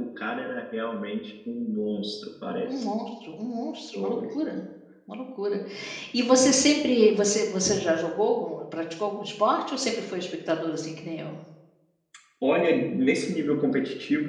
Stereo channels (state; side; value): identical; both; correlation 1.00